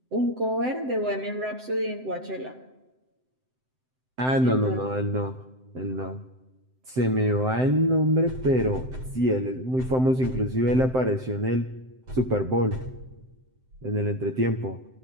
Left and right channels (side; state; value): left; late; 7.8 ms